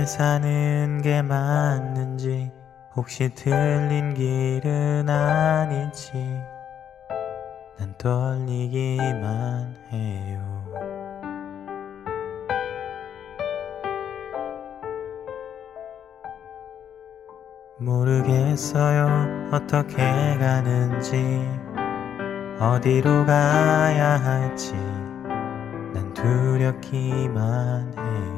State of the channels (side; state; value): right; quieter; 9.0 dB